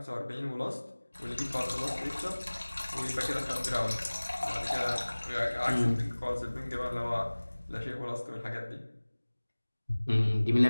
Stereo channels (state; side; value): inverted; both; correlation -1.00